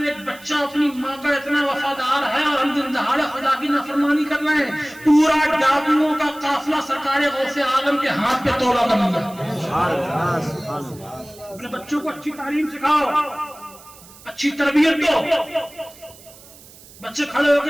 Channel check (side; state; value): right; noise; hiss, 21 dB below the sound